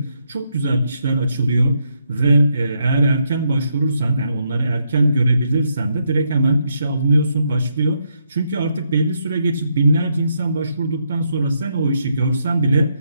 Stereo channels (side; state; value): both; inverted; correlation -0.77